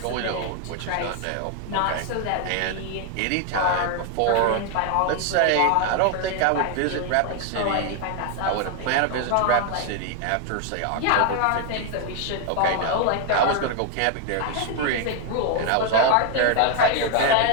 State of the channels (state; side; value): different; both; correlation 0.00